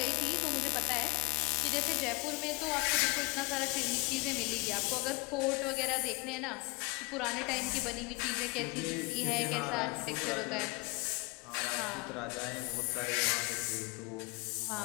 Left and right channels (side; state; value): right; quieter; 28.3 dB